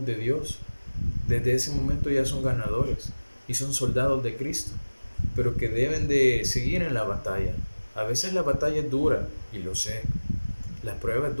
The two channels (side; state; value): both; inverted; correlation -1.00